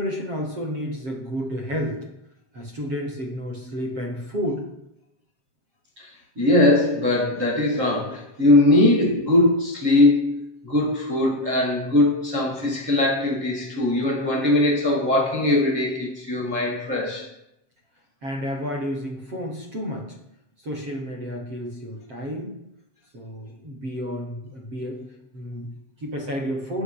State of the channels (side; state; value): left; late; 7.6 ms